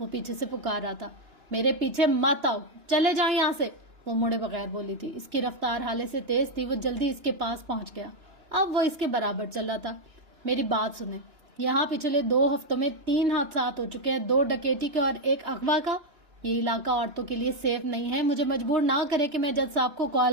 پیچھے سے پکار رہا تھا۔ میرے پیچھے مت آؤ، چلے جائیں یہاں سے، وہ مڑے بغیر بولی تھی۔ اس کی رفتار حالے سے تیز تھی، وہ جلدی اس کے پاس پہنچ گیا۔ اب وہ اس کے برابر چل رہا تھا۔ میری بات سنیں، یہاں پچھلے 2 ہفتوں میں 3 حادثات ہو چکے ہیں، 2 ڈکیتی کے اور 1 اغوا کا۔ یہ علاقہ عورتوں کے لیے سیف نہیں ہے، مجھے مجبور نہ کرے کہ میں جج صاحب کو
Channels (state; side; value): late; left; 2.9 ms